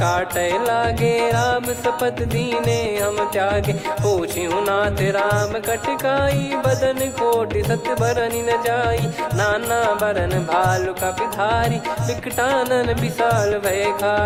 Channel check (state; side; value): identical; both; correlation 1.00